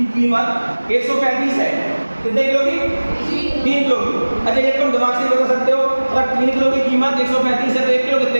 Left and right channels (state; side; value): inverted; both; correlation -1.00